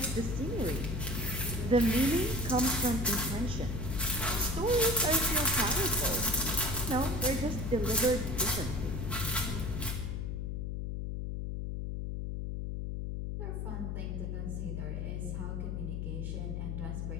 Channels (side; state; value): left; noise; hum, 3 dB below the sound